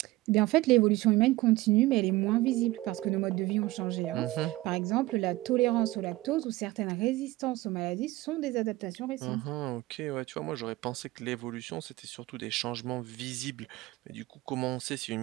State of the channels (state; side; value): quieter; left; 18.7 dB